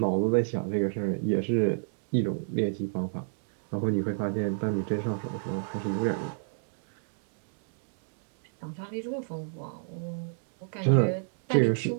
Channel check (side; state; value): left; silent; digital silence